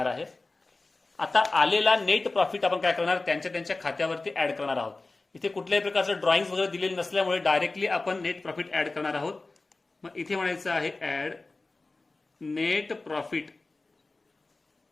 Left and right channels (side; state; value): right; quieter; 3.4 dB